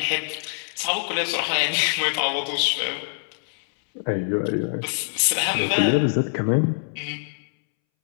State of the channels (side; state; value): right; silent; 62 dB below the other